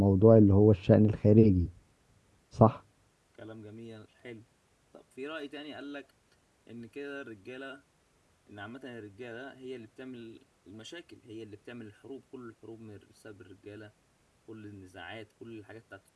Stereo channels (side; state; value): both; identical; correlation 1.00